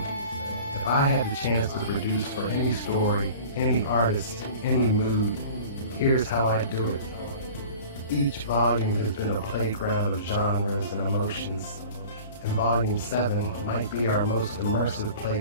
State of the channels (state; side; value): inverted; both; correlation -0.42